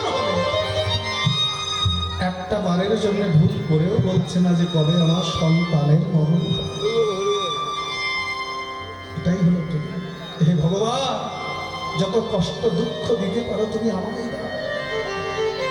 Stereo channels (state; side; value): identical; both; correlation 1.00